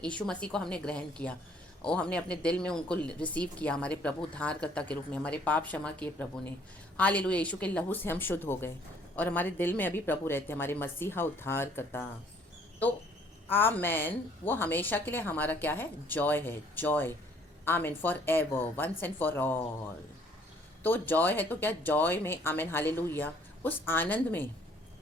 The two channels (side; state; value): both; normal; correlation 0.60